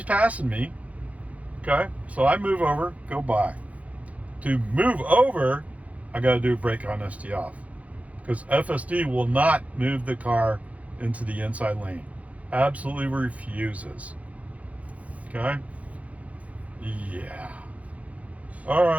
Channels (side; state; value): left; late; 0.067 ms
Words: passing me, okay? So I move over, go by. To move over, I got to do a brake on ST off. Because FSD will not move the car into the inside lane. Absolutely refuses. Okay? Yeah. All